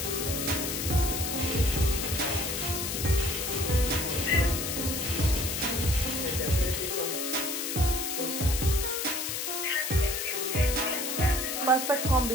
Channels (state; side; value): noise; left; hiss, 2 dB below the sound